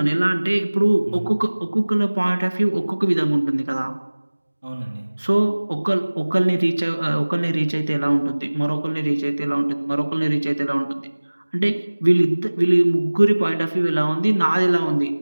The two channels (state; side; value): inverted; both; correlation -1.00